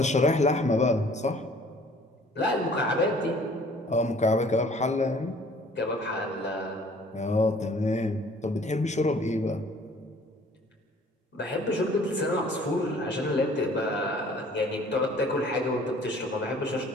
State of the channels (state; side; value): normal; both; correlation 0.54